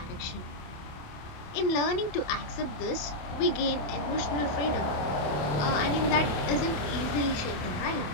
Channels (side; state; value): right; late; 28 ms